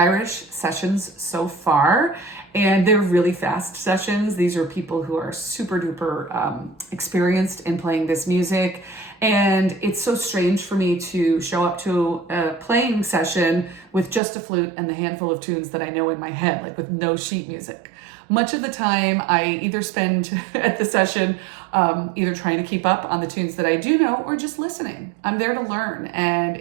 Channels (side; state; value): left; drops out; at 14.2 s